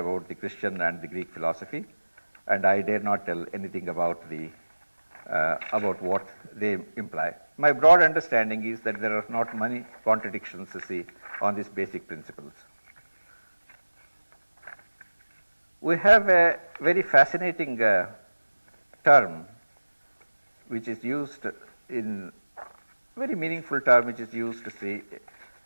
the Christian and the Greek philosophy. and I dare not tell anything about what they imply. My broad understanding is that there are not many contradictions, on these basic principles. We have a very fascinating term which is used in very meaningful term which is used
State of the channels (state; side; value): inverted; both; correlation -1.00